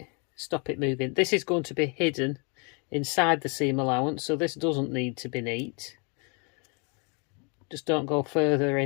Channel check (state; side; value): quieter; right; 34.6 dB